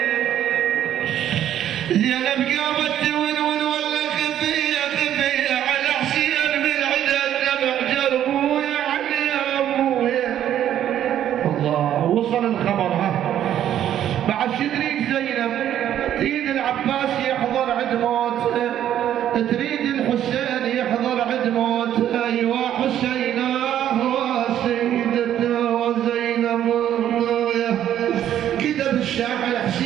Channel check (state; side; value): quieter; left; 11.0 dB